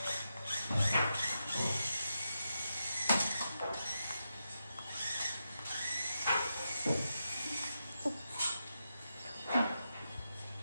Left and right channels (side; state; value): both; inverted; correlation -0.87